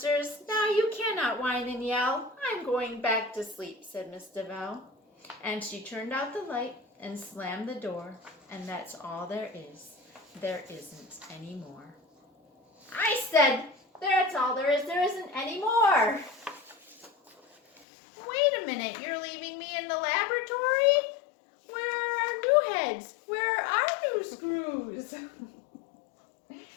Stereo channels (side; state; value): right; drops out; at 17.8 s